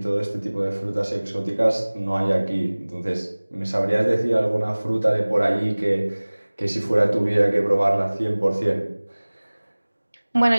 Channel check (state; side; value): inverted; both; correlation -1.00